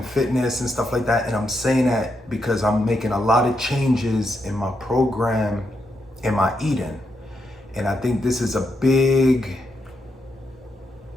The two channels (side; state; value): both; normal; correlation 0.82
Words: fitness and stuff like that. And I'm saying that because I'm making a lot of changes in my program, in my eating. And I think this is a big